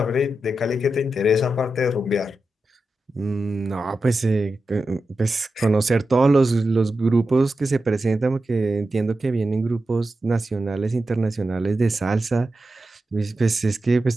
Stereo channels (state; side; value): normal; both; correlation 0.90